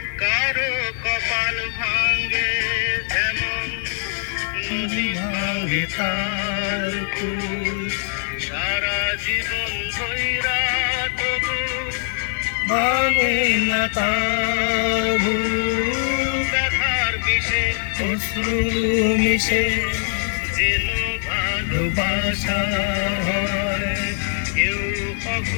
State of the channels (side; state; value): right; silent; 64 dB below the other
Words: কারো কপাল ভাঙ্গে যেমন নদী ভাঙ্গে তার কুল, সারা জীবন ধইরা তবু ভাঙে না তার ভুল। ব্যথার বিষে অশ্রু মিশে যেন ভালোবাসা হয়, কেউ